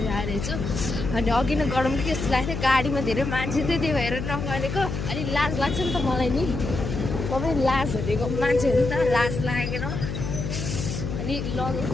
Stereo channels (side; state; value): left; noise; hum, 5 dB below the sound